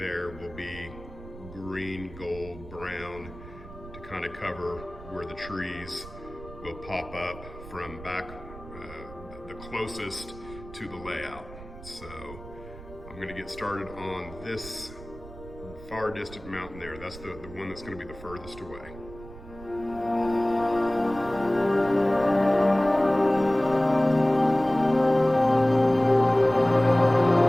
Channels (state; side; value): noise; right; rumble, 16 dB below the sound